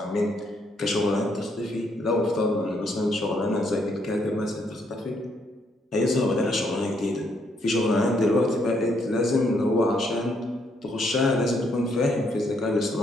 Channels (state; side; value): normal; both; correlation 0.73